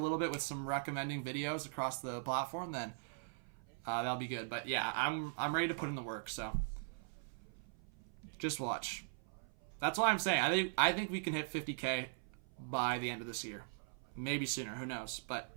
bit with some recommending videos across the platform, then that'll be good. But yeah, I'm ready to put in the work. So just watch. That's what I'm saying. I think we can hit 50K by the end of this year. Maybe sooner. Who knows? But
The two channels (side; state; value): left; silent; 51 dB below the other